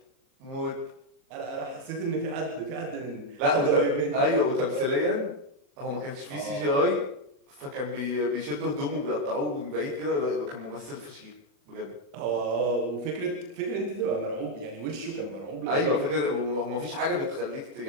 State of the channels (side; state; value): left; late; 40 ms